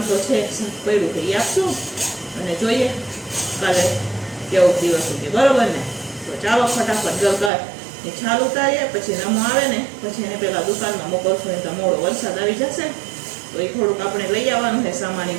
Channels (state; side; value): drops out; left; at 7.5 s